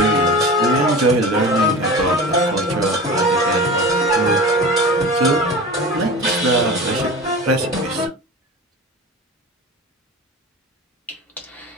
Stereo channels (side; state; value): both; normal; correlation 0.33